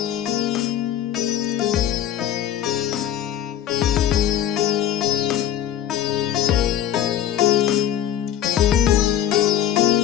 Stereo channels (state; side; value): quieter; right; 10.9 dB